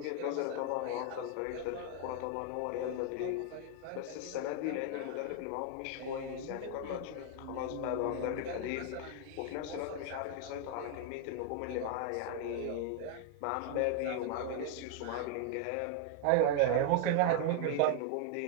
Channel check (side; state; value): both; different; correlation 0.00